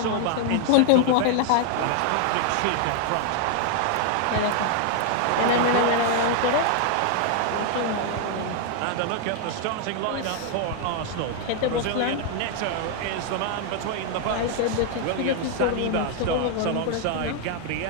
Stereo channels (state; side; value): different; both; correlation 0.00